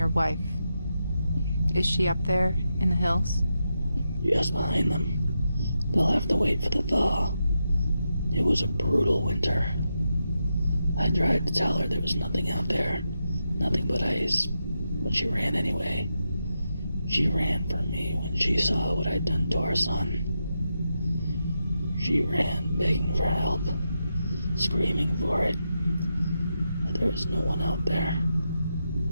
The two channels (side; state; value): both; inverted; correlation -0.86